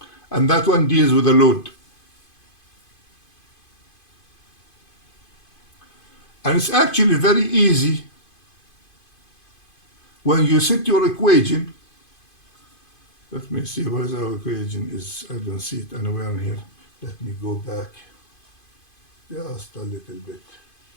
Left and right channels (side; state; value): right; late; 2.5 ms